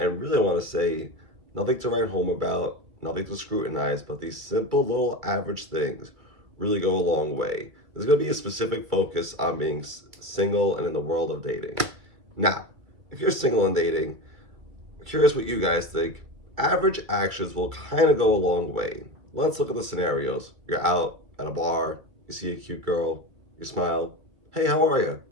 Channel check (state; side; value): late; left; 2.3 ms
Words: really, I want to say nothing to write home about, nothing to scrutinize, but these simple little average things really go a long way. There's going to be a specific focus on being single and in the world of dating. Now, if you're single and dating, I'm curious what you guys think. Average actions will kind of go a long way. Let's look at the scenarios. You're out at a bar, you see a cute girl, you smile. Hey, how are you?